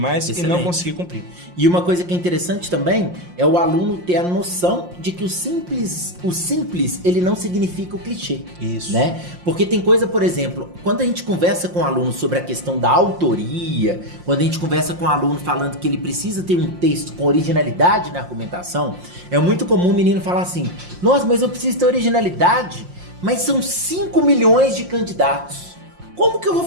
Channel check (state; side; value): late; left; 5.6 ms